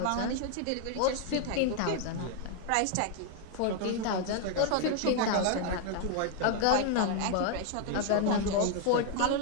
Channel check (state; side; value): different; both; correlation 0.00